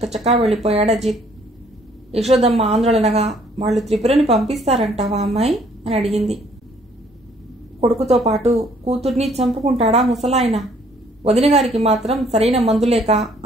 వెళ్ళిపోయాడు అజిత్. యశోదమ్మ ఆందోళనగా, వాళ్ళు త్రిపురని పంపిస్తారంటావా అమ్మాయి అని అడిగింది. కొడుకుతో పాటు కూతుర్ని చంపుకుంటాడా ముసలాయన? వదినగారికి మాత్రం సరైన మందులేక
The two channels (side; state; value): both; normal; correlation 0.62